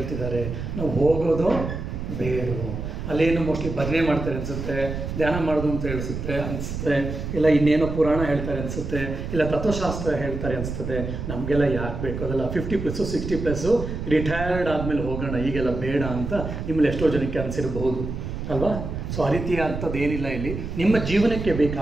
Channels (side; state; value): right; noise; rumble, 5 dB below the sound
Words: ನಾವು ಹೋಗೋದು ಬೇರು, ಅಲ್ಲೇನು ಮೋಸ್ಟ್ಲಿ ಭಜನೆ ಮಾಡ್ತಾರೆ ಅನಿಸುತ್ತೆ, ಧ್ಯಾನ ಮಾಡೋದು ಅಂತ ಅನಿಸುತ್ತೆ, ಇಲ್ಲ ಇನ್ನೇನೋ ಪುರಾಣ ಹೇಳ್ತಾರೆ ಅನಿಸುತ್ತೆ, ಇಲ್ಲ ತತ್ವಶಾಸ್ತ್ರ ಹೇಳ್ತಾರೆ ಅನಿಸ್ತದೆ. ನಮಗೆಲ್ಲ ಯಾಕೆ ಬೇಕು ಅದೆಲ್ಲ 50+, 60+, ರಿಟೈರ್ಡ್ ಆದಮೇಲೆ ಹೋಗೋಣ, ಈಗೆಲ್ಲ ಬೇಡ ಅಂತ ನಿಮ್ಮಲ್ಲಿ ಎಷ್ಟೋ ಜನಕ್ಕೆ ಅನಿಸಿರಬಹುದು ಅಲ್ವಾ? ಸೊ ಆ ರೀತಿಯ ಅಂಥದ್ದು ಏನಿಲ್ಲ. ಇಲ್ಲಿ ನಿಮ್ಮ ಜೀವನಕ್ಕೆ